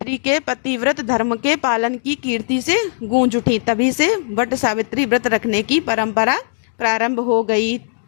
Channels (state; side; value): silent; right; digital silence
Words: के पतिव्रत धर्म के पालन की कीर्ति से गूंज उठी। तभी से वट सावित्री व्रत रखने की परंपरा प्रारंभ हो गई।